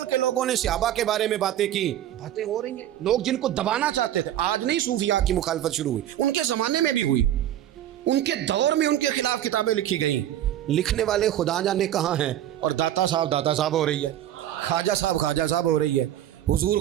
کے لوگوں نے صحابہ کے بارے میں باتیں کی. باتیں ہو رہی ہیں, لوگ جن کو دبانا چاہتے تھے. آج نہیں صوفیاء کی مخالفت شروع ہوئی, ان کے زمانے میں بھی ہوئی, ان کے دور میں ان کے خلاف کتابیں لکھی گئیں. لکھنے والے خدا جانے کہاں ہیں, اور داتا صاحب ہو رہی ہے, خواجہ صاحب ہو رہی ہے. حضور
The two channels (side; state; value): left; quieter; 12.1 dB